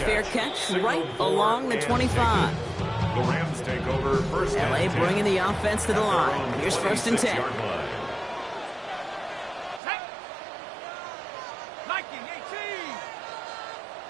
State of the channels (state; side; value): drops out; left; at 9.8 s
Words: catch right along the 25. The Rams take over first and LA 10. bringing the offense to the line. Here's 1st and 10.